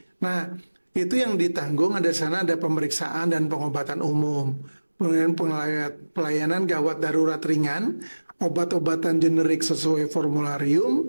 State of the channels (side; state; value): both; inverted; correlation -1.00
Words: Nah, itu yang ditanggung ada sana ada pemeriksaan dan pengobatan umum. Kemudian pelayanan gawat darurat ringan, obat-obatan generik sesuai